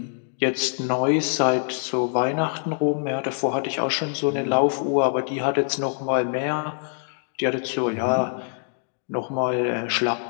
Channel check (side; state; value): right; silent; digital silence